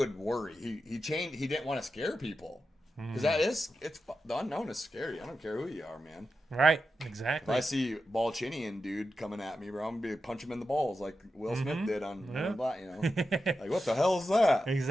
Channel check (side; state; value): both; normal; correlation 0.90